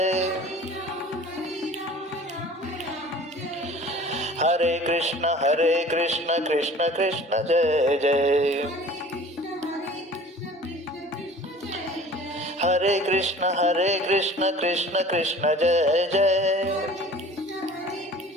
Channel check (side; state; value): both; normal; correlation 0.45